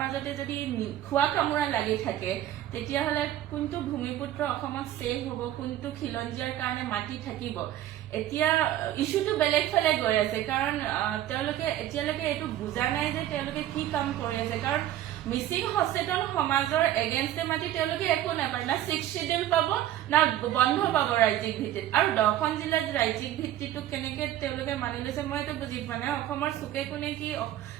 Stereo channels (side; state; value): left; quieter; 12.8 dB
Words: যদি খোৱা কামোৰা লাগি থাকে তেতিয়াহ'লে কোনটো ভূমিপুত্ৰ অসমত ছেভ হ'ব, কোনটো খিলঞ্জীয়াৰ কাৰণে মাটি থাকিব? এতিয়া ইছ্যুটো বেলেগ ফালে গৈ আছে, কাৰণ তেওঁলোকে এতিয়ালৈকে এইটো বুজা নাই যে তেওঁলোকে কি কাম কৰি আছে। কাৰণ মিচিং সচেতন সমাজৰ এগেইনষ্টে মাতি তেওঁলোকে একো নাপায়, না 6th শিডিউল পাব না বন্ধ পাব ৰাজ্যিক ভিত্তিত। আৰু 10খন জিলাত ৰাজ্যিক ভিত্তিটো কেনেকে তেওঁলোকে মানি লৈছে মই এইটো বুজি পোৱা নাই। অসমৰ চুকে কোনে কি